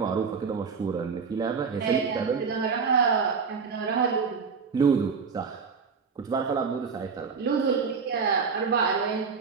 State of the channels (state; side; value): quieter; left; 5.6 dB